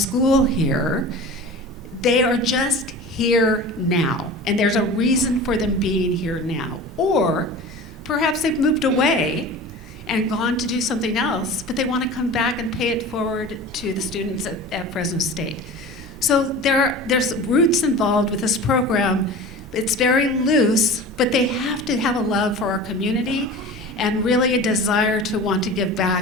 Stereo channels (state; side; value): normal; both; correlation 0.36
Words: here. They are just here now. And there's a reason for them being here now. Or perhaps they've moved away and gone to do something else, but they want to come back and pay it forward to the students at Fresno State. So there's roots involved with this program. It's very loose, but they have to have a love for our community and really a desire to want to give